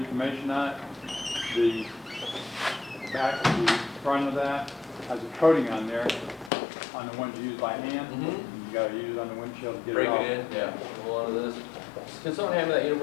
on it. The back, the front of that has a coating on there, on the ones you use by hand. You gotta use it on the windshield to get Break it off. it in. Yeah. Hold on to this. Can someone hand me that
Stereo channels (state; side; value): drops out; right; at 6.5 s